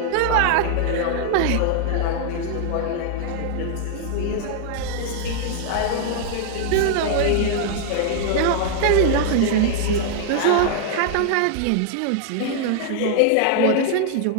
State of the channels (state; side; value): different; both; correlation 0.00